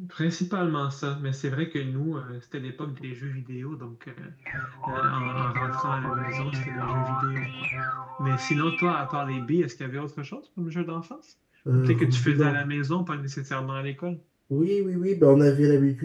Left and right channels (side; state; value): both; identical; correlation 1.00